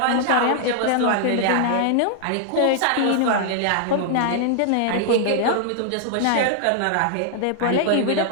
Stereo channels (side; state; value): both; different; correlation 0.00